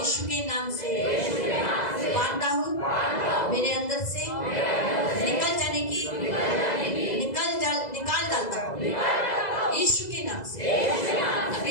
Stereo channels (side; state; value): right; late; 2.0 ms